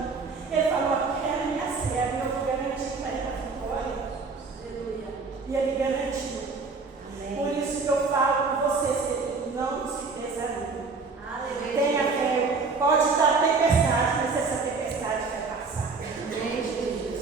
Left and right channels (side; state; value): left; quieter; 4.3 dB